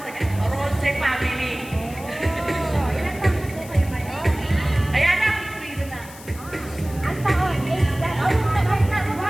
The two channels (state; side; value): noise; left; hiss, 18 dB below the sound